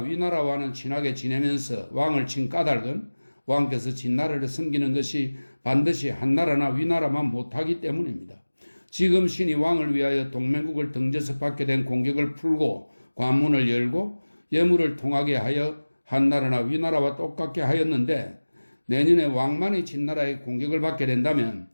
친하게 지내면서 왕을 친 까닭은 왕께서 진나라를 섬기는 것이 반드시 한나라나 위나라만 못하기 때문입니다. 지금 신이 왕을 위하여 동맹국을 등져서 받게 된 공격을 풀고 관문을 열고 예물을 통하게 하여 한나라나 위나라와 똑같게 하였는데 내년에 왕만이 진나라의 공격을 받게 된다면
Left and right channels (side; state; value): both; inverted; correlation -1.00